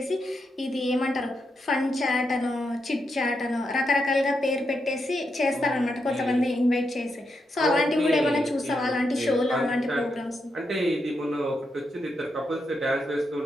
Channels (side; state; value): both; normal; correlation 0.83